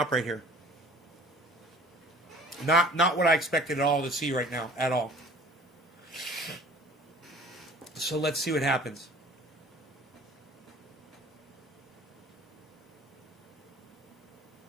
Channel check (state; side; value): normal; both; correlation 0.48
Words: right here. Not what I expected at all to see right now, at all. So let's see what happens.